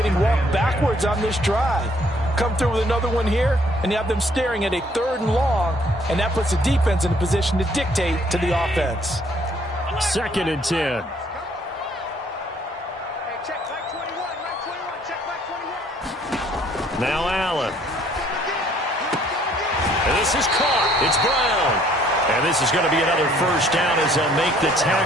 walked backwards on this drive. Come through with another one here, and you have them staring at a 3rd and long, and that puts the defense in a position to dictate to the offense. 2nd and 10. Now Allen. And this is caught. It's Brown. And this is going to be another first down as they'll make the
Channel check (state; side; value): normal; both; correlation 0.62